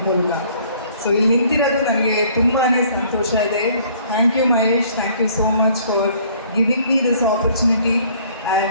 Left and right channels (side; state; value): both; inverted; correlation -0.58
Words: ಮೂಲಕ. ಸೊ ಇಲ್ಲಿ ನಿಂತಿರೋದು ನನಗೆ ತುಂಬಾ ಸಂತೋಷ ಇದೆ. Thank you Mahesh, thank you so much for giving me this opportunity